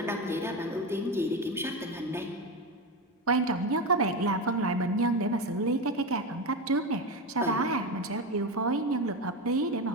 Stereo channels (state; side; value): normal; both; correlation 0.17